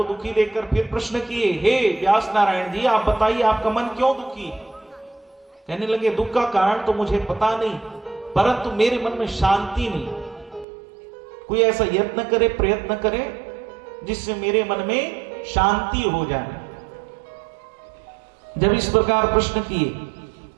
दुखी देखकर फिर प्रश्न किए, हे व्यास नारायण जी आप बताइए आपका मन क्यों दुखी है? कहने लगे दुख का कारण तो मुझे पता नहीं, परंतु मेरे मन में शांति नहीं। कोई ऐसा यत्न करे, प्रयत्न करे जिससे मेरे मन में शांति हो जाए। जब इस प्रकार प्रश्न किए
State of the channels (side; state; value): left; drops out; at 10.7 s